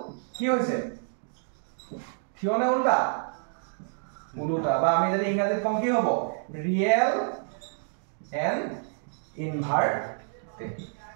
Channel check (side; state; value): left; silent; digital silence